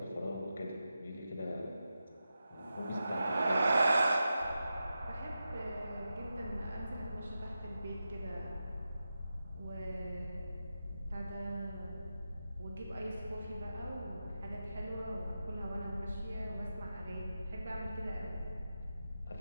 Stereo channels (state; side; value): inverted; both; correlation -0.90